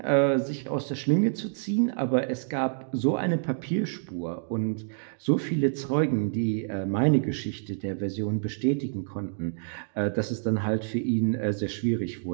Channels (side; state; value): left; silent; digital silence